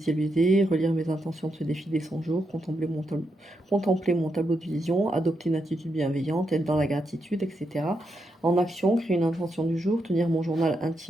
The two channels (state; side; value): normal; both; correlation 0.83